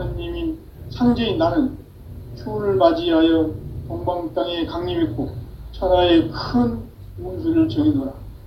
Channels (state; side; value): identical; both; correlation 1.00